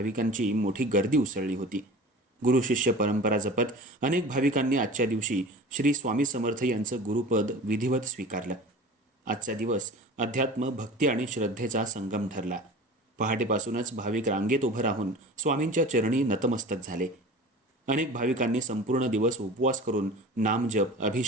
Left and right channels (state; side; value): normal; both; correlation 0.38